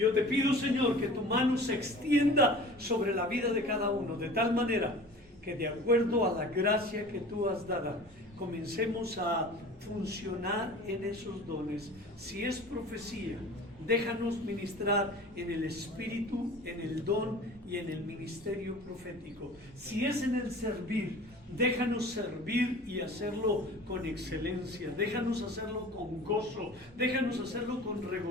te pido, Señor, que tu mano se extienda sobre la vida de cada uno, de tal manera que de acuerdo a la gracia que tú has dado, comencemos a funcionar en esos dones. Si es profecía, déjanos ministrar en el espíritu, en el don y en el ministerio profético. Si es en el servir, déjanos servir y hacerlo con excelencia. Déjanos hacerlo con gozo. Déjanos hacerlo con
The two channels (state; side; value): normal; both; correlation 0.41